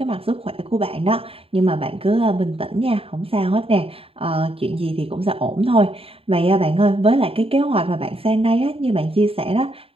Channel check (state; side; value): late; left; 0.27 ms